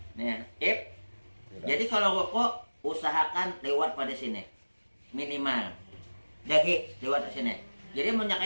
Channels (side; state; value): both; inverted; correlation -1.00